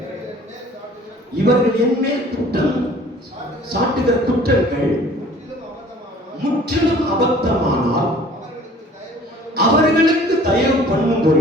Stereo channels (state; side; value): normal; both; correlation 0.50